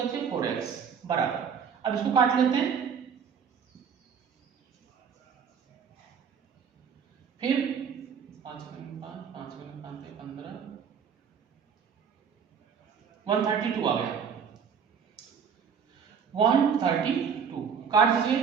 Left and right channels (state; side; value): quieter; left; 7.0 dB